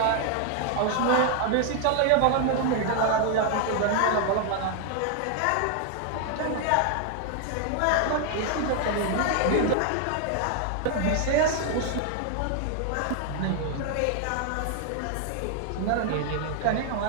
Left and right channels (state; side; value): different; both; correlation 0.00